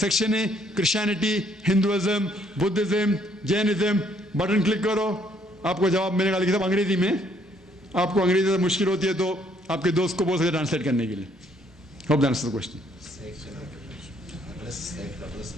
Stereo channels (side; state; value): both; normal; correlation 0.67